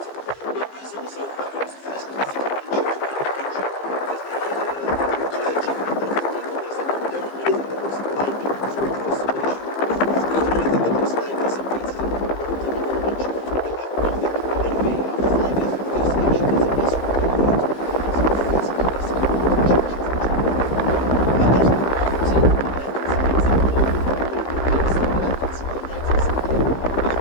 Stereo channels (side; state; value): right; late; 15 ms